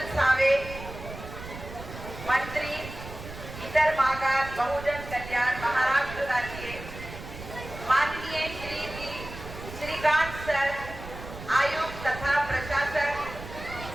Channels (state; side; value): noise; right; rumble, 12 dB below the sound